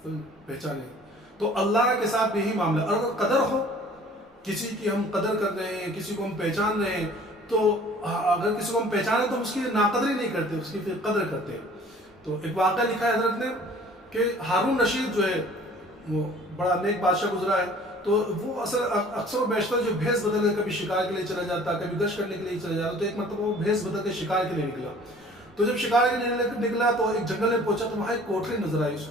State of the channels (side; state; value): both; normal; correlation 0.51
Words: پہچانے تو اللہ کے ساتھ بھی یہی معاملہ۔ اور اگر قدر ہو، کسی کی ہم قدر کر رہے ہیں، کسی کو ہم پہچان رہے ہیں، تو اگر کسی کو ہم پہچانے تو ہم اس کی ناقدری نہیں کرتے، اس کی پھر قدر کرتے ہیں۔ تو ایک واقعہ لکھا ہے حضرت نے کہ ہارون رشید جو ہے وہ بڑا نیک بادشاہ گزرا ہے، تو وہ اکثر و بیشتر جو بھیس بدل کے کبھی شکار کے لیے چلا جاتا، کبھی گشت کرنے کے لیے چلا جاتا، تو ایک مرتبہ وہ بھیس بدل کے شکار کے لیے نکلا۔ تو جب شکار کے لیے نکلا تو ایک جنگل میں پہنچا، تو وہاں ایک کوٹری نظر آئی اس